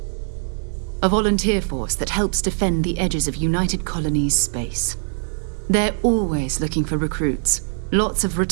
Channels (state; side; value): silent; left; digital silence